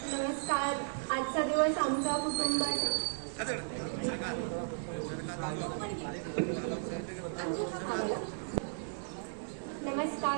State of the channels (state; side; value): silent; left; digital silence